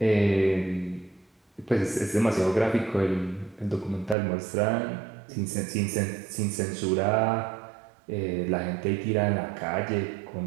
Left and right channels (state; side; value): drops out; left; at 4.2 s